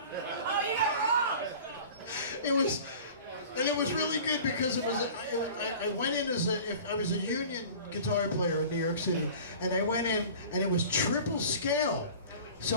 Oh, you got wrong. It was really good because I went in as if I was a union guitar player in New York City, and I went in and it was triple scale,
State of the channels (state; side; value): inverted; both; correlation -0.42